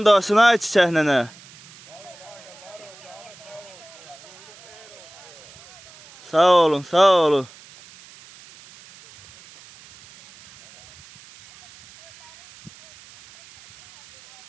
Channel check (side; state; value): right; noise; hiss, 22 dB below the sound